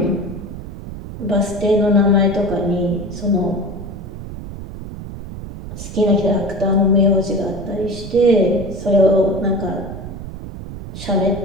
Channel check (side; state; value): right; noise; rumble, 10 dB below the sound